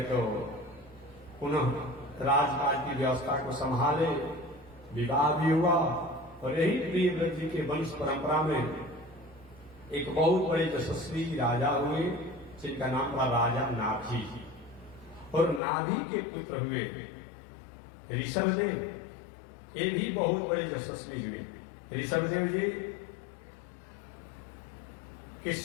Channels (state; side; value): drops out; right; at 15.6 s